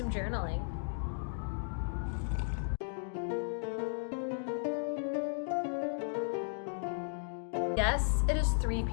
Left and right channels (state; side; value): silent; right; digital silence